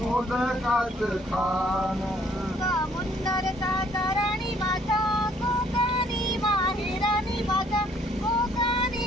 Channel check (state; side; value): normal; both; correlation 0.62